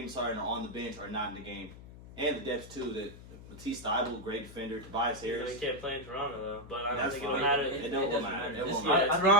Harden are on the bench or not in the game. And the depth, too, that Matisse Thybulle, great defender. Tobias Harris. He can't play in Toronto, though. But I don't That's think fine. it'll matter. It don't matter. It won't Yeah, matter.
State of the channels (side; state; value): left; noise; hum, 16 dB below the sound